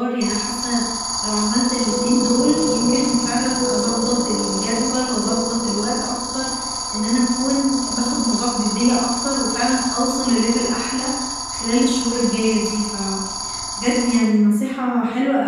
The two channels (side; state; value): both; identical; correlation 1.00